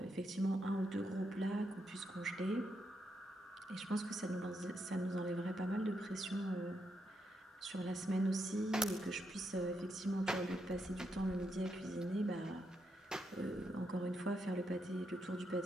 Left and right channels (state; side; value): normal; both; correlation 0.81